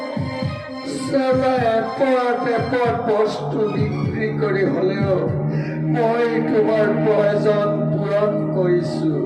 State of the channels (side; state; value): both; identical; correlation 1.00